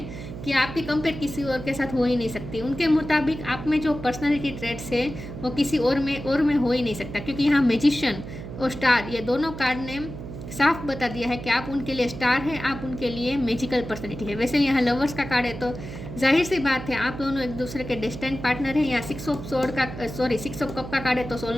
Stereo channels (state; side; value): noise; right; hum, 10 dB below the sound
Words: कि आपकी कंपेयर किसी और के साथ हो ही नहीं सकती। उनके मुताबिक आप में जो पर्सनालिटी ट्रेट्स है वो किसी और में हो ही नहीं सकता, क्योंकि यहाँ मैजिशियन और स्टार ये दोनों कार्ड ने साफ बता दिया है कि आप उनके लिए स्टार है, आप उनके लिए मैजिकल पर्सनैलिटी है। वैसे यहाँ लवर्स का कार्ड है तो जाहिर सी बात है आप दोनों एक दूसरे के डिस्टेंट पार्टनर हैं। यहाँ 6 ऑफ कप का कार्ड है तो